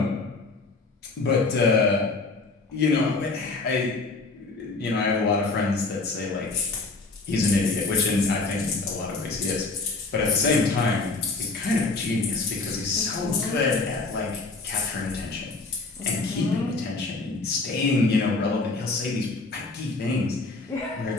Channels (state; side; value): quieter; right; 3.7 dB